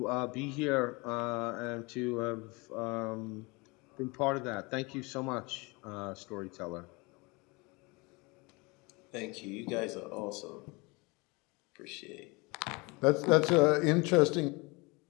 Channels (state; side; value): quieter; right; 26.4 dB